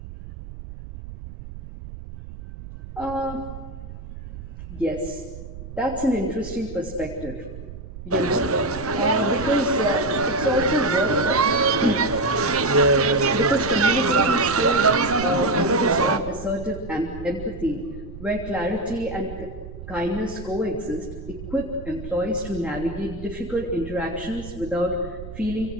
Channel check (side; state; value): right; noise; rumble, 12 dB below the sound